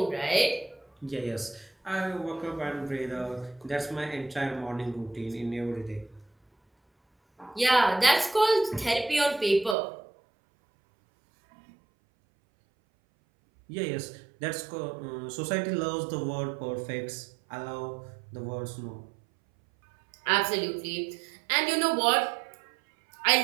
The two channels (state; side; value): drops out; left; at 9.8 s